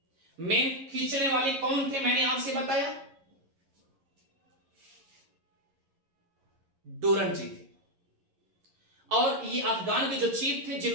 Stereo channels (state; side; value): late; left; 11 ms